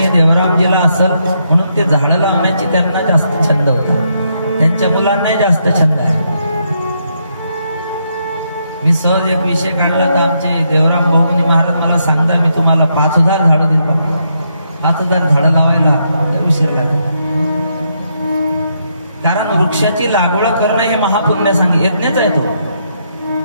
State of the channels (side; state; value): both; inverted; correlation -0.78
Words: देवरामजीला असेल, म्हणून ते झाडं लावण्याची त्यांना जास्त छंद होता. त्यांच्या मुलांनाही जास्त छंद आहे. मी सहज एक विषय काढला तर आमचे देवराम बहुमनी महाराज मला सांगता, मी तुम्हाला 5000 झाडं दिली. 5000 झाडं लावायला उशीर लागला. कारण वृक्षाची लागवड करणं हे महापुण्य सांग यज्ञच आहे. तो